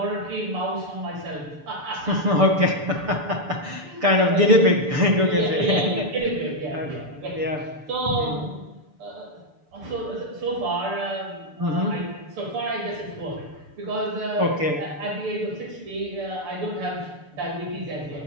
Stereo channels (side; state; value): left; late; 6.8 ms